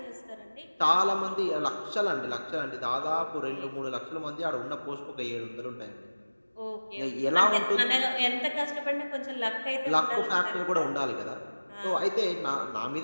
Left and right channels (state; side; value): inverted; both; correlation -1.00